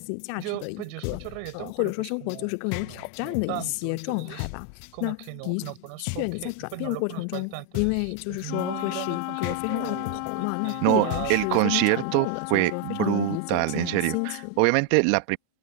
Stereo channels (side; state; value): both; different; correlation 0.00